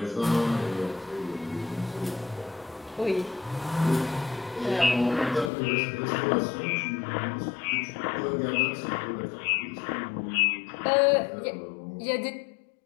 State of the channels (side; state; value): right; drops out; at 5.5 s